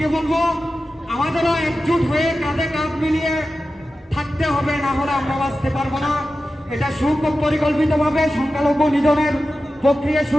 বলবো, আমাদেরও একজোট হয়ে কাঁধে কাঁধ মিলিয়ে থাকতে হবে, না হলে আমরা বাঁচতে পারবো না। এটা সুপরিকল্পিতভাবে সংখ্যালঘু নিধনের প্রক্রিয়া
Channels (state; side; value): normal; both; correlation 0.93